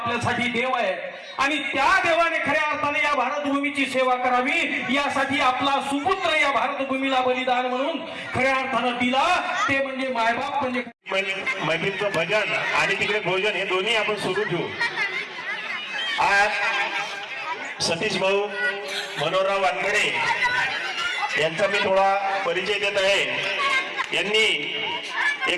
देव आहे आणि त्या देवाने खऱ्या अर्थाने या भारतभूमीची सेवा करावी यासाठी आपला सुपुत्र या भारतभूमीला बलिदान म्हणून खऱ्या अर्थानं दिला, ते म्हणजे मायबाप म्हणजे मैत्रीचं भजन आणि तिकडे भोजन हे दोन्ही आपण सुरू ठेवू। आज सतीश भाऊ मनोहरराव वानखेड़े यांचा मी थोडा परिचय देत आहे। यांनी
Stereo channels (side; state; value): both; identical; correlation 1.00